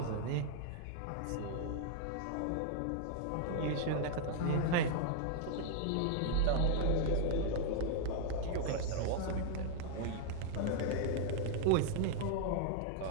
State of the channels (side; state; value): both; different; correlation -0.01